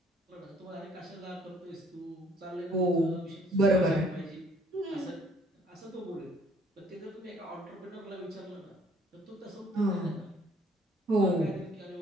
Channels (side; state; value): both; normal; correlation 0.61